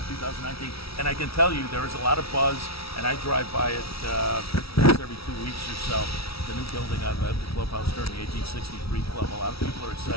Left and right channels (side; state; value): right; late; 0.76 ms